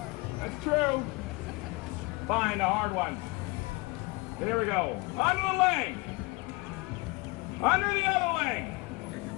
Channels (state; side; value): quieter; right; 25.1 dB